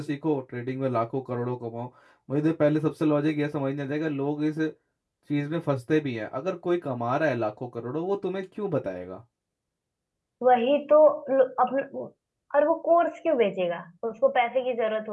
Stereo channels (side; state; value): both; identical; correlation 1.00